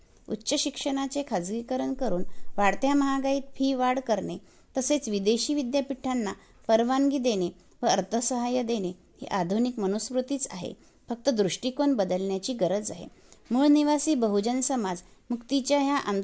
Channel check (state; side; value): identical; both; correlation 1.00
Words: उच्च शिक्षणाचे खाजगीकरण करून वाढत्या महागाईत फी वाढ करणे, तसेच विदेशी विद्यापीठांना परवानगी देणे व अर्थसहाय्य देणे ही आधुनिक मनुस्मृतीच आहे. फक्त दृष्टिकोन बदलण्याची गरज आहे. मूळ निवासी बहुजन समाज मुक्तीच्या ह्या